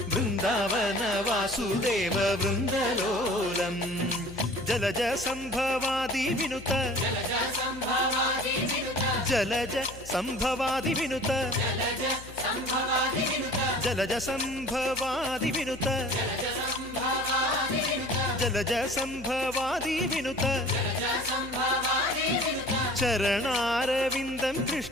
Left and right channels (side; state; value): left; noise; hum, 17 dB below the sound